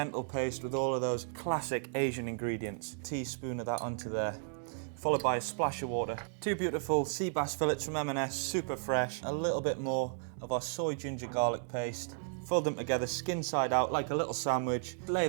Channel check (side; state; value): left; silent; digital silence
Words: paste with all of those classic Asian ingredients. Teaspoon of that onto there, followed by a splash of water. 2 beautiful sea bass fillets from M&S, super fresh. A little bit more of our soy, ginger, garlic paste. Fold them together, skin side out, like a little sandwich.